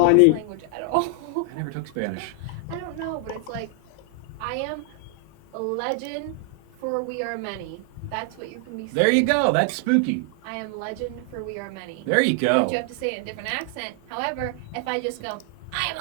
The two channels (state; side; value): different; both; correlation 0.00